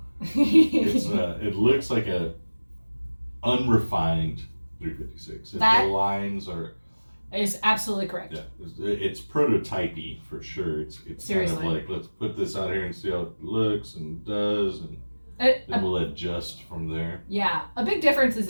it looks like a unrefined 356. The lines are... Is absolutely correct. Yeah, it's prototypey for sure. It's Seriously. kind of like, let's put this out here and see how it looks and does, and then we'll adjust from there. Yeah, a big difference is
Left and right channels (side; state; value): both; inverted; correlation -1.00